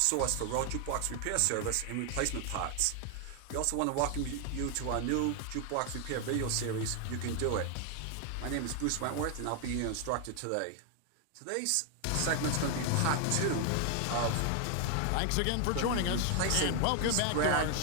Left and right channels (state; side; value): different; both; correlation 0.00